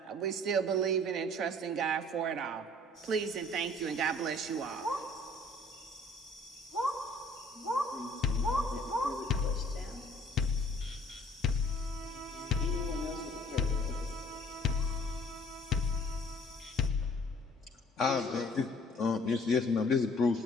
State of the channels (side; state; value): both; normal; correlation 0.55